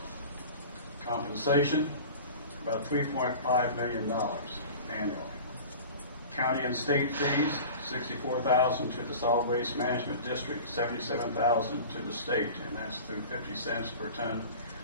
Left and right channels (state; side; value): inverted; both; correlation -0.38